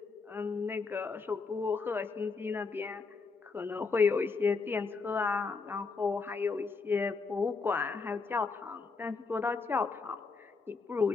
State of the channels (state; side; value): quieter; right; 4.5 dB